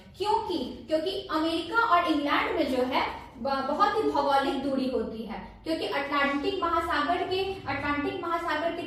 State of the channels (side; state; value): both; identical; correlation 1.00